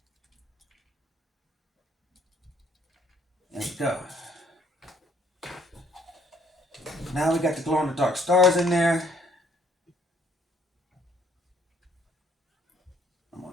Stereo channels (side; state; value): both; normal; correlation 0.63